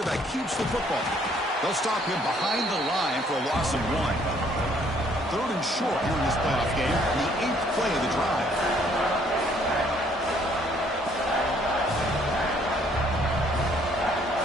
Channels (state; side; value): normal; both; correlation 0.64